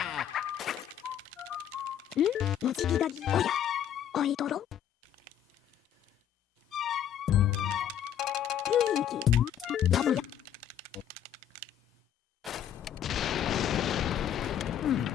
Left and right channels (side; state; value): right; quieter; 9.9 dB